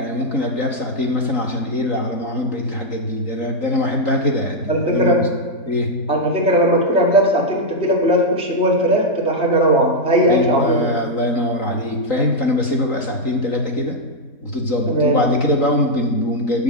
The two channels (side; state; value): right; late; 3.9 ms